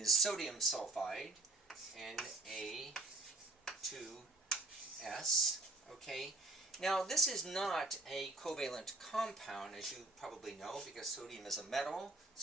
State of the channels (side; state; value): left; quieter; 3.3 dB